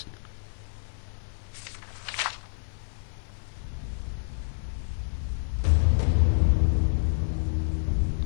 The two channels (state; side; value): silent; right; 59 dB below the other